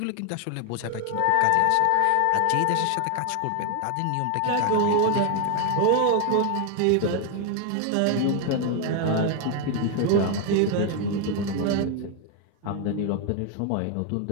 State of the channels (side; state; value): both; different; correlation 0.01